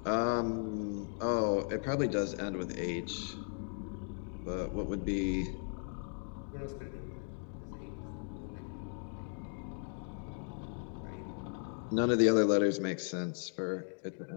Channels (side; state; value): right; silent; 53 dB below the other